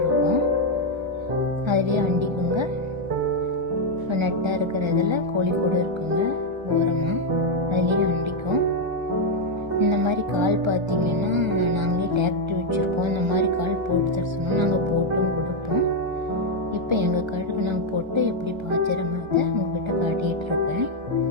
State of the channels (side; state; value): left; late; 1.3 ms